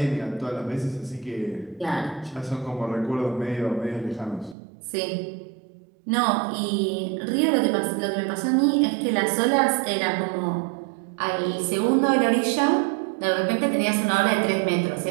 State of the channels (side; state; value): left; drops out; at 4.5 s